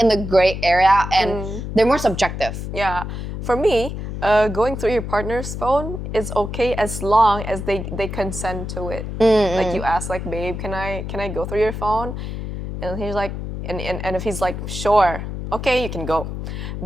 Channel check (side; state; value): left; noise; hum, 6 dB below the sound